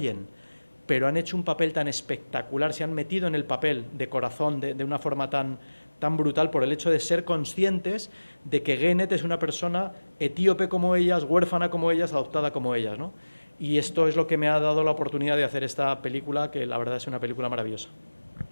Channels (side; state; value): both; inverted; correlation -1.00